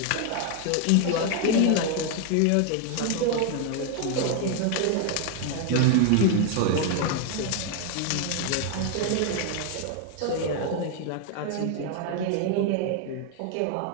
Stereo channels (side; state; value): both; different; correlation 0.00